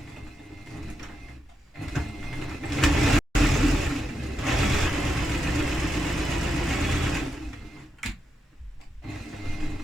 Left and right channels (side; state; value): both; normal; correlation 0.84